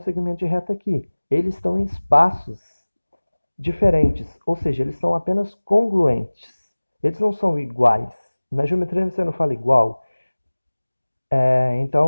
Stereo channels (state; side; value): inverted; both; correlation -1.00